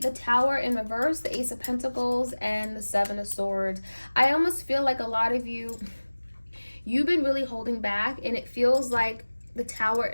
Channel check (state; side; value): inverted; both; correlation -1.00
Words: Tower in reverse, the Ace of Pentacles, and the Seven of Swords. I almost feel like a lot of you, you've been really holding back, and it feels like the Tower